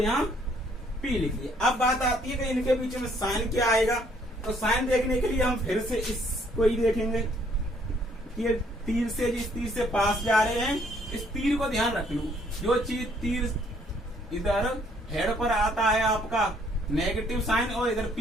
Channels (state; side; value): normal; both; correlation 0.65